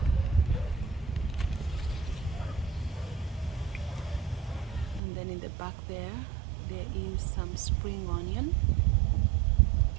And then in the back there is some spring onion.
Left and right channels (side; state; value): left; drops out; at 5.0 s